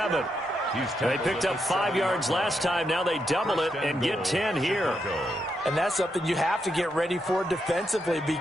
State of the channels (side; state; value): both; normal; correlation 0.82